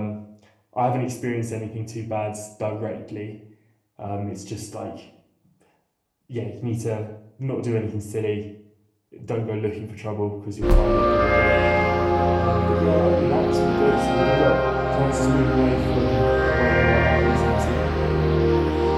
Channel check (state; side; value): identical; both; correlation 1.00